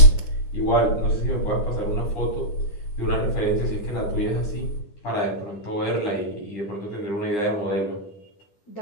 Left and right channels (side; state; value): right; late; 9.9 ms